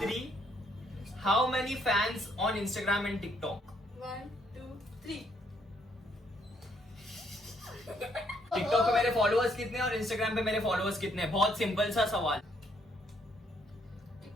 how many fans on Instagram and TikTok? 1 2 3। TikTok पे मेरे फॉलोअर्स कितने और इंस्टाग्राम पे मेरे फॉलोअर्स कितने? बहुत सिंपल सा सवाल।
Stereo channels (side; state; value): both; normal; correlation 0.70